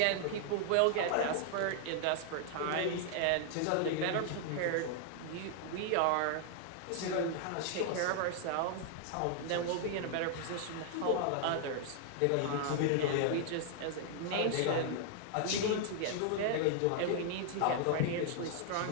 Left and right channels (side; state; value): both; different; correlation 0.00